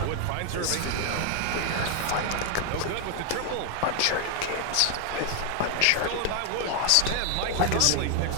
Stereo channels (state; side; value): different; both; correlation 0.00